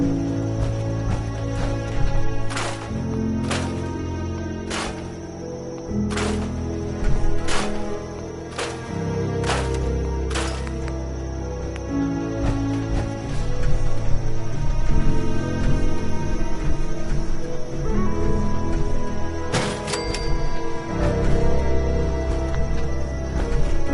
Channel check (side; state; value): both; identical; correlation 1.00